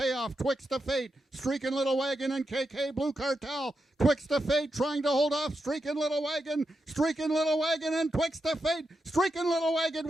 Twixt of Fate, Streakin' Little Wagon, and KK Blue Cartel. Twixt of Fate trying to hold off Streakin' Little Wagon, Streakin' Little Wagon, and Twixt of Fate. Streakin' Little Wagon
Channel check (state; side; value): normal; both; correlation 0.86